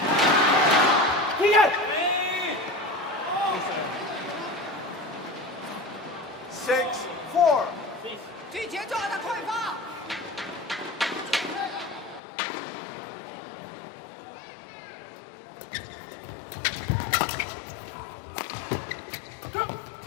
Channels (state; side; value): drops out; right; at 12.2 s